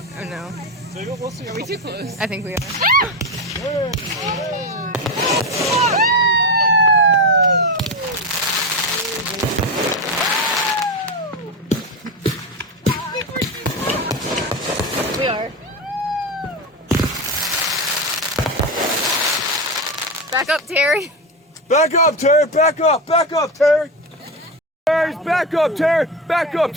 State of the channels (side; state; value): both; normal; correlation 0.17